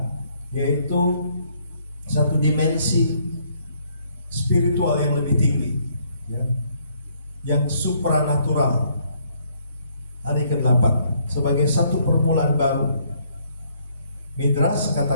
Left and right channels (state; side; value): inverted; both; correlation -0.67